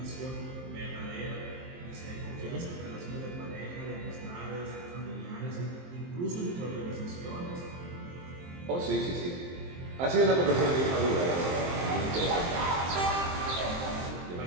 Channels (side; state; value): left; late; 23 ms